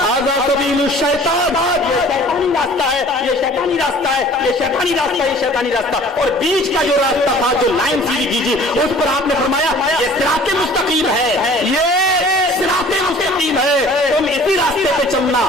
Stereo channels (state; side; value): normal; both; correlation 0.49